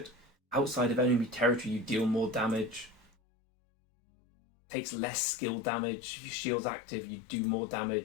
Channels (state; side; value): drops out; right; at 3.1 s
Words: outside of enemy territory, you deal more damage. Takes less skill damage. If your shield's active, you do more